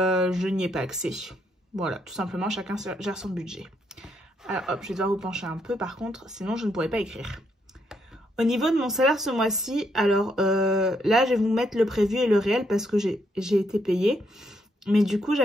n'y ai pas accès. Voilà, tout simplement chacun gère son budget. Alors hop, je vais devoir vous pencher un peu par contre, sinon je ne pourrais pas écrire. Au niveau de mon salaire ce mois-ci, alors là, je vais vous mettre le prévu et le réel parce que j'ai été payée. Mais du coup,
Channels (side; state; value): both; normal; correlation 0.75